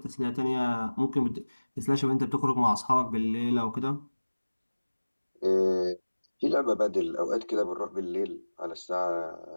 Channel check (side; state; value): both; inverted; correlation -1.00